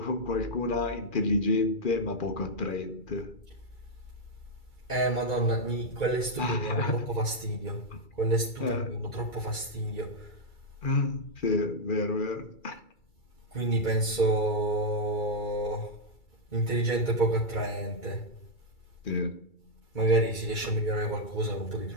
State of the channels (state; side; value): late; right; 2.3 ms